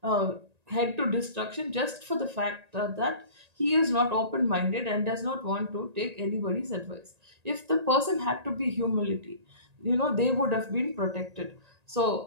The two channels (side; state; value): left; late; 1.8 ms